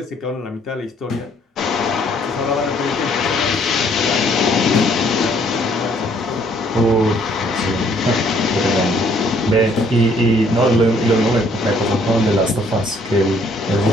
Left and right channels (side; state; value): both; normal; correlation 0.64